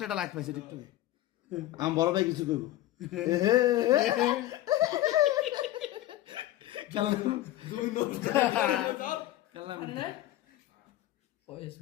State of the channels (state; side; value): quieter; right; 14.8 dB